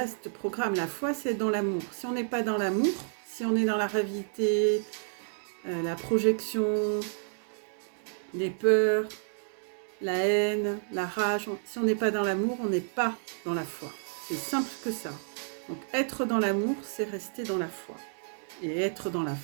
programme. La foi, c'est dans l'amour. Si on n'est pas dans l'amour, si on est dans la réalité, la projection, les peurs, la haine, la rage, si on n'est pas dans l'amour, on n'est pas dans la foi. C'est simple que ça. Donc être dans l'amour, c'est rester dans la foi. Et être dans la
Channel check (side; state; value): left; silent; digital silence